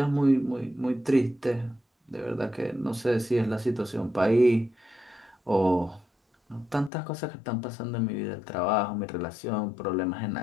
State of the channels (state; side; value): drops out; right; at 6.9 s